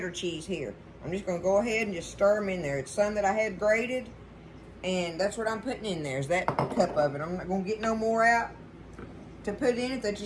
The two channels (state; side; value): identical; both; correlation 1.00